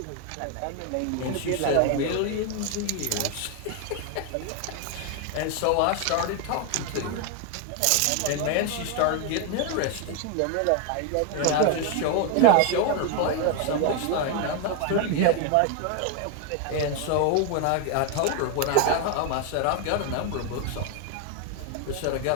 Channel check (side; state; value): both; different; correlation 0.01